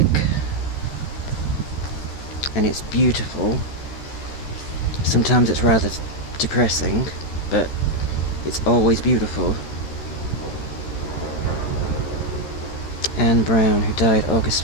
And it's beautiful. Sometimes it's rather depressing, but it's always beautiful. Anne Brown, who died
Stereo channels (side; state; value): right; late; 13 ms